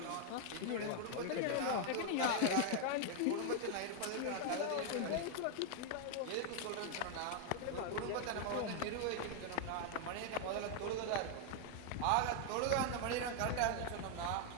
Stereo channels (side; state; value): both; different; correlation 0.00